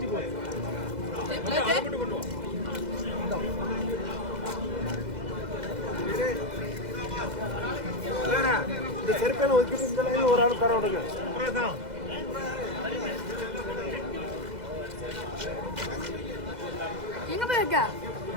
போ இந்த செருப்பேல ஒதுக்கிட்டு இந்த லைன் ஒரு ஆள் தர விடுங்க. எங்க போயிருக்க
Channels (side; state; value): left; late; 2.0 ms